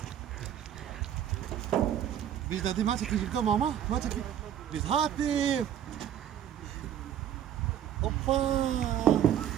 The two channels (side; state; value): left; quieter; 10.2 dB